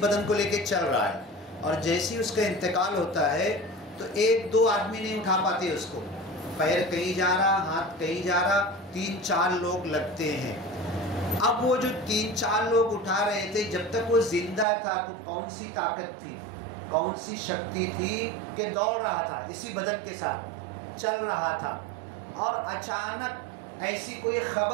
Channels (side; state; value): left; drops out; at 14.7 s